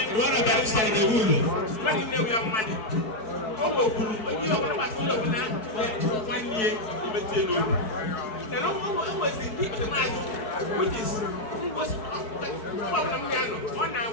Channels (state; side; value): late; right; 4.6 ms